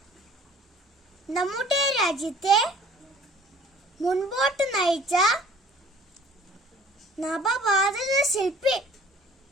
നമ്മുടെ രാജ്യത്തെ മുൻപോട്ട് നയിച്ച നവഭാരത ശില്പി.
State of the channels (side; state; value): both; normal; correlation 0.51